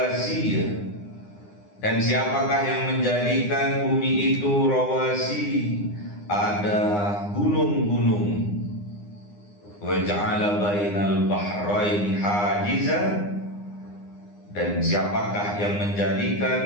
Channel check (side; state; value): right; late; 9.8 ms